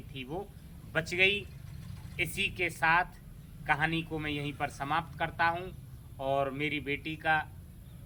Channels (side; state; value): both; identical; correlation 1.00